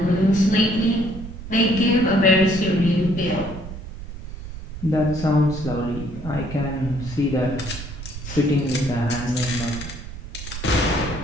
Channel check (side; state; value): right; noise; rumble, 11 dB below the sound